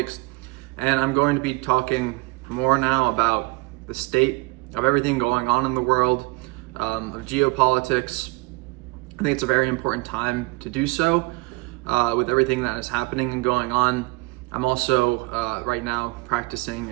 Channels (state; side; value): quieter; left; 25.1 dB